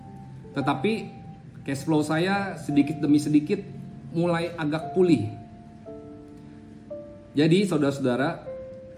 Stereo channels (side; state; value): both; identical; correlation 1.00